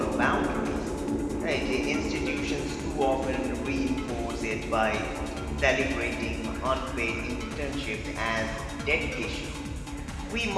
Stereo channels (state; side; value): identical; both; correlation 1.00